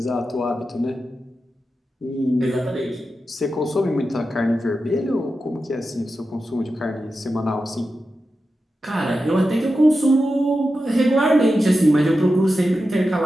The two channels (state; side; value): normal; both; correlation 0.91